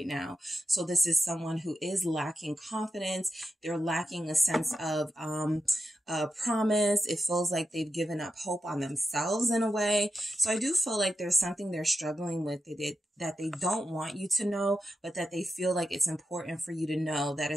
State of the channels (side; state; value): both; normal; correlation 0.90